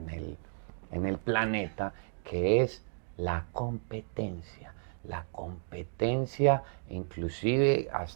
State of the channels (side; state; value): left; silent; digital silence